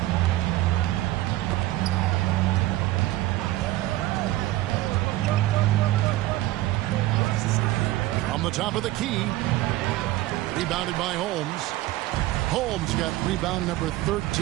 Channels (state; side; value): quieter; left; 16.7 dB